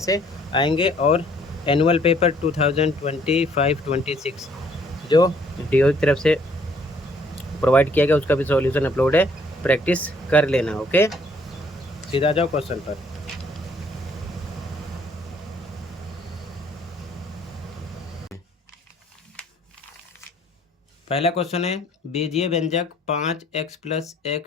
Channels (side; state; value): both; normal; correlation 0.62